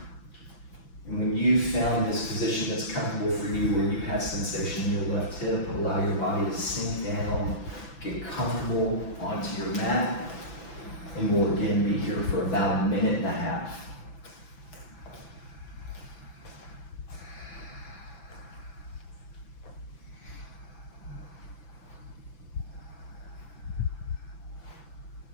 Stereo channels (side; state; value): right; late; 6.0 ms